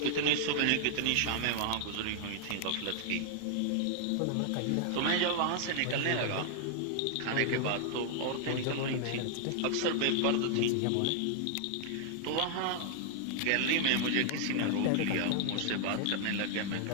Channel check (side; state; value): both; different; correlation 0.00